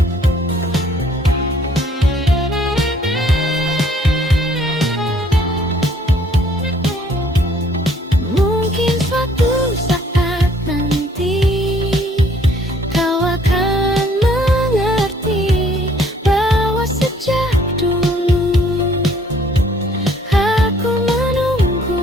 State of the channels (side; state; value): both; normal; correlation 0.61